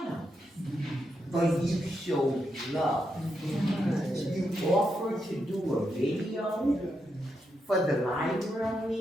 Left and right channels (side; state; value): both; normal; correlation 0.83